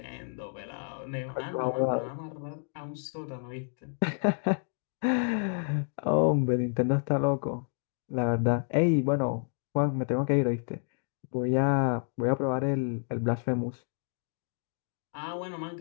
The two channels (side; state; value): right; silent; 58 dB below the other